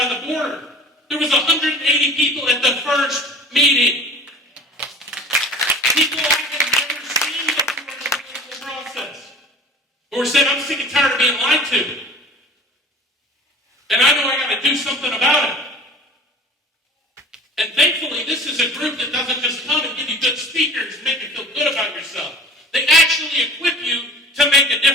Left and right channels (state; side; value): normal; both; correlation 0.43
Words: the border. There was 180 people at the first meeting. People I had never seen before in the political process. Or said, I'm sick and tired of being lied to. And I know I got to do something about it. And thankfully, this is a group that doesn't just come and give you good speakers and make you feel good about yourself. They actually equip you to make a